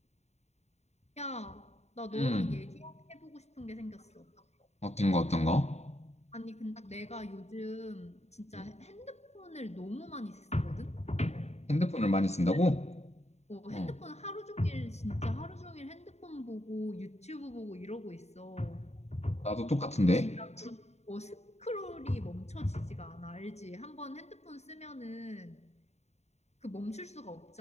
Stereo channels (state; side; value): late; right; 0.32 ms